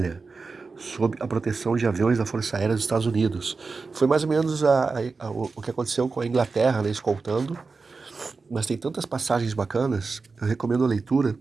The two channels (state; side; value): quieter; left; 4.3 dB